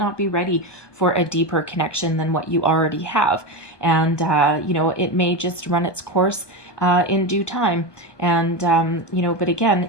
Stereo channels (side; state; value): right; late; 1.2 ms